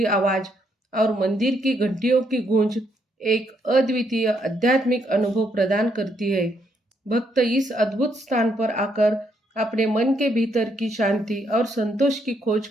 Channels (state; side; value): normal; both; correlation 0.74